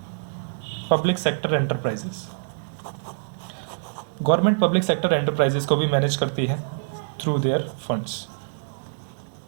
public sector enterprises. Government public sector enterprises को भी मैनेज करती है थ्रू देयर फंड्स।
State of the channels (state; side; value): silent; left; digital silence